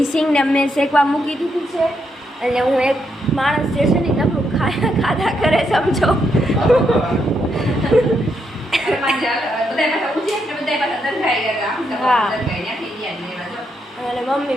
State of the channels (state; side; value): normal; both; correlation 0.79